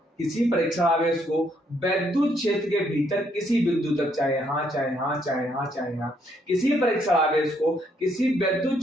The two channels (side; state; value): both; normal; correlation 0.71